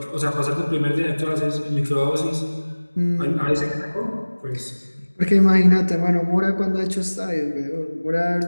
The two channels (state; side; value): inverted; both; correlation -1.00